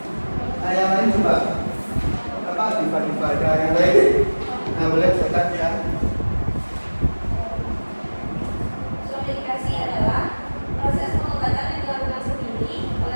Nah, yang lain coba. Apa diva ada yang lain? Nah, boleh silakan ya. Swamedikasi adalah proses pengobatan yang dilakukan sendiri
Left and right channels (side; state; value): both; inverted; correlation -1.00